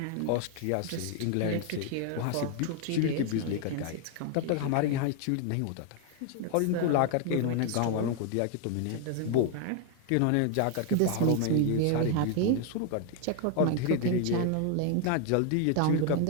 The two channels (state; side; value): different; both; correlation 0.00